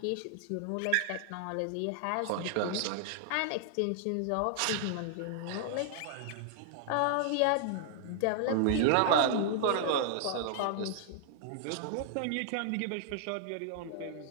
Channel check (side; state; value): both; different; correlation -0.01